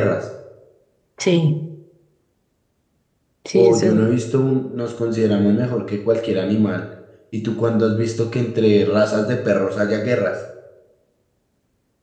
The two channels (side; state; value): both; identical; correlation 1.00